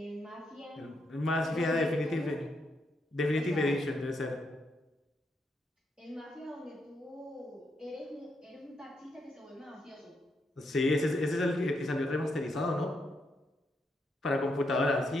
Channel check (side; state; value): both; normal; correlation 0.79